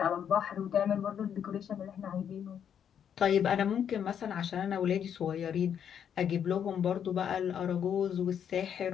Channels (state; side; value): quieter; right; 8.5 dB